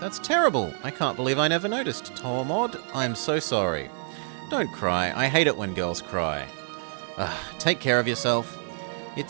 terrible. I can't believe I never noticed, Tormod. I'm so sorry. Don't cry. I hate it when girls cry. Take care of yourself.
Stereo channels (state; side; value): silent; left; digital silence